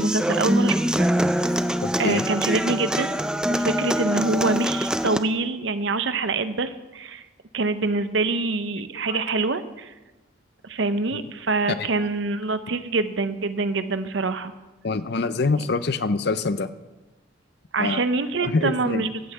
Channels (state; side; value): normal; both; correlation 0.40